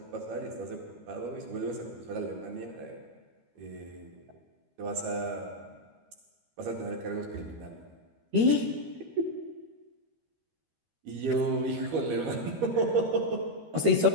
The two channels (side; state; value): left; late; 13 ms